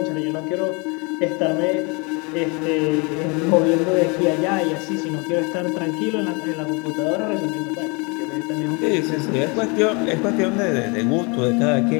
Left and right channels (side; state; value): right; quieter; 30.7 dB